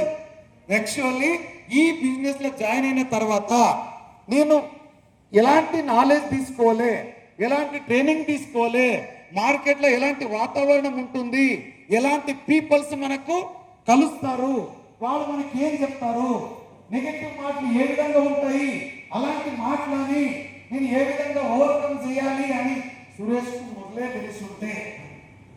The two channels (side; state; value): both; identical; correlation 1.00